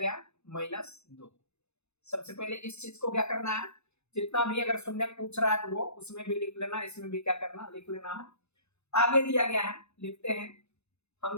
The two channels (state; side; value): late; right; 0.81 ms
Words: -2। सबसे पहले इस चीज को क्या करना है, जितना भी अगर शून्य पूछ रहा है तो वो उसमें भी लिख लेना, इसमें भी क्या करना लिख लेना है। आगे दिया गया है, लिखते हैं। हम